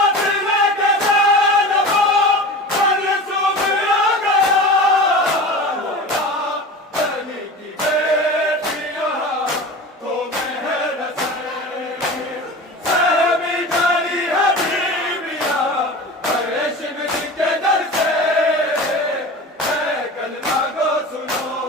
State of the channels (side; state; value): both; normal; correlation 0.34